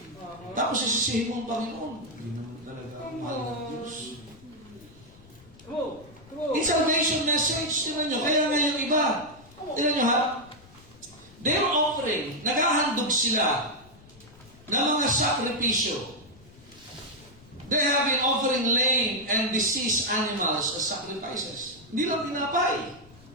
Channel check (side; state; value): left; noise; rumble, 24 dB below the sound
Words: Tapos isisihin mo ang Panginoon. Hindi naman talaga ang mahal ng Diyos. In salvation message, tingnan nyo. Kaya nga yung iba, tingnan nyo ha, they're offering, naghahandog sila ng mga sakripisyo. They have been offering lame and diseased animals as sacrifices. Hindi lang tinapay.